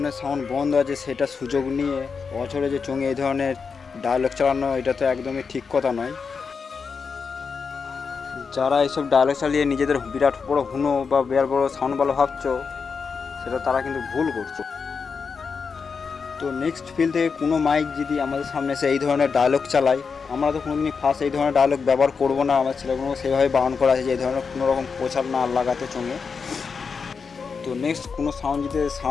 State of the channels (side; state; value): right; quieter; 5.5 dB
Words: সাউন্ড বন্ধ আছে, সেটা সুযোগ নিয়ে বছরে যে চোঙে এই ধরনের ডায়লগ চালানো, এটা তো একদমই ঠিক কথা নয়। যারা এইসব ডায়লগ চালিয়ে নিজেদের বিরাট বড় হুনো বা বিরাট বড় সাউন্ড ভালো ভাবছো, সেটা তারা কিন্তু ভুল করছো। তো নেক্সট ফিল থেকে কোনো মাইক যদি আমাদের সামনে এসে এই ধরনের ডায়লগ চালায়, আমরা তো কোনোদিনই ফার্স্ট এই ধরনের ডায়লগ ব্যবহার করবো না। আমার ছেলেগুলোকে সেইভাবে বারণ করা আছে যে এই ধরনের কোনো রকম প্রচার না লাগাতে চোঙে। তো নেক্সট কোনো সাউন্ড যদি